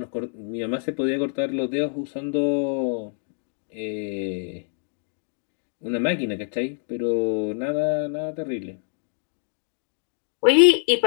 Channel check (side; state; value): right; silent; 61 dB below the other